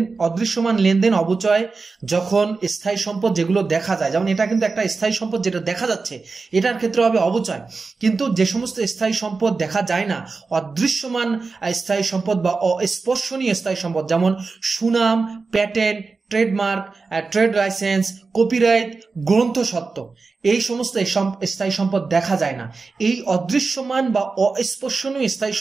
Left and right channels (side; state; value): left; quieter; 4.2 dB